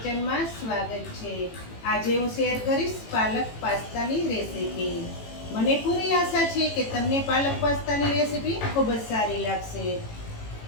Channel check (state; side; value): late; right; 18 ms